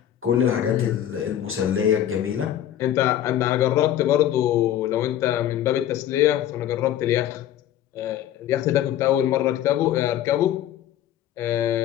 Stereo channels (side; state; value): right; quieter; 11.4 dB